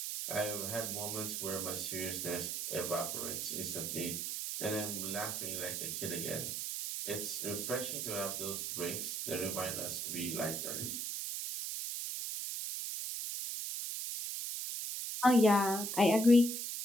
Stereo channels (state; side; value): noise; right; hiss, 3 dB below the sound